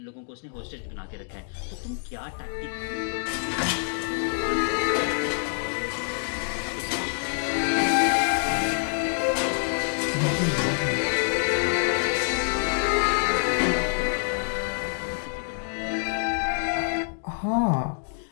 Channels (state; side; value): silent; right; 61 dB below the other